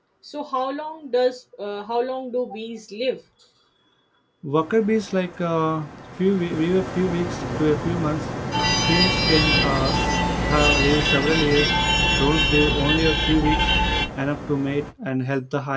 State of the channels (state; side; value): identical; both; correlation 1.00